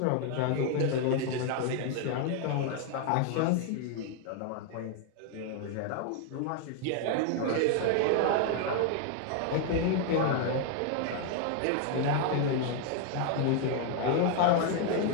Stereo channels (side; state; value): both; different; correlation 0.00